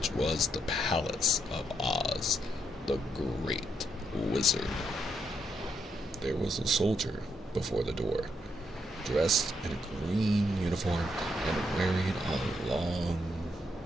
was the Palace of Oz, the Great Wizard. There was a soldier before the door, dressed in a green uniform and wearing a long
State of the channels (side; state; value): both; normal; correlation 0.77